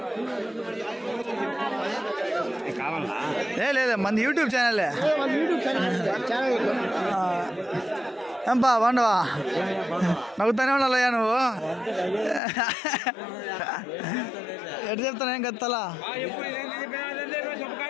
లేదా మంది యూట్యూబ్ ఛానలే. ఏంపా బాగుండవా? నవ్వుతానే ఉండాలయ్యా నువ్వు. ఎటు చెప్తాను ఏం కదా తల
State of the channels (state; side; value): drops out; right; at 12.4 s